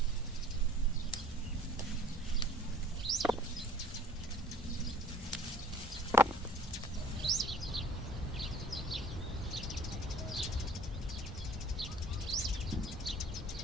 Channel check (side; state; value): both; normal; correlation 0.49